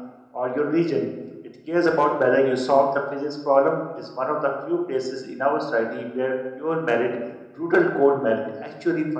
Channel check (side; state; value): both; identical; correlation 1.00